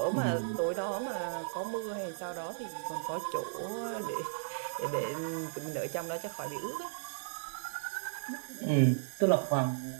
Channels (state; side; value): silent; left; 54 dB below the other